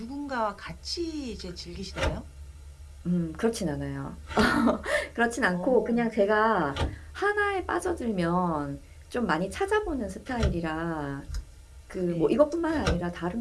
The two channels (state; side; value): identical; both; correlation 1.00